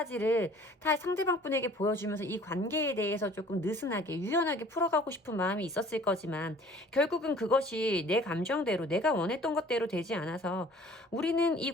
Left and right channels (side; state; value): both; normal; correlation 0.51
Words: 다 상대방 분에게 보여주면서 이 관계에 대해서 조금 느슨하게 유연하게 풀어가고 싶은 마음이 있었을 거지만 결국은 그것이 내 감정대로 내가 원했던 것대로 되지 않아서 우리는 이